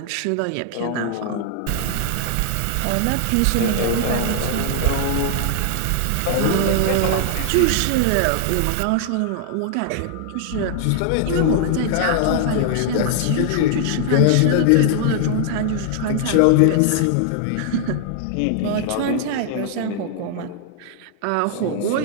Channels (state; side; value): different; both; correlation -0.01